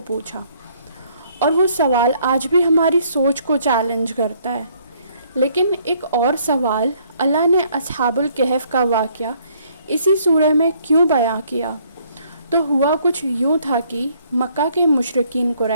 پوچھا؟ اور وہ سوال آج بھی ہماری سوچ کو چیلنج کرتا ہے۔ لیکن ایک اور سوال، اللہ نے اصحاب الکہف کا واقعہ اسی سورہ میں کیوں بیان کیا؟ تو ہوا کچھ یوں تھا کہ مکہ کے مشرکین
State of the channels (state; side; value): inverted; both; correlation -0.65